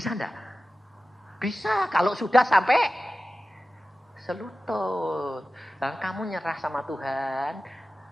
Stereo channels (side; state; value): both; normal; correlation 0.95